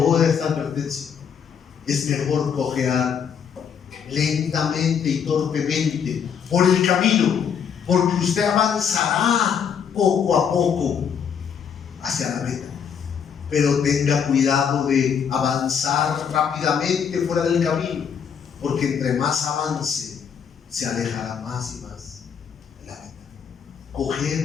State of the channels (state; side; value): quieter; right; 7.4 dB